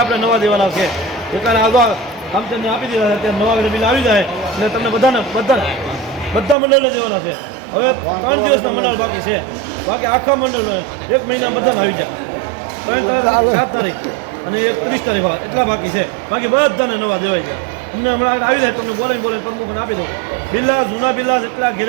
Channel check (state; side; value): drops out; left; at 6.6 s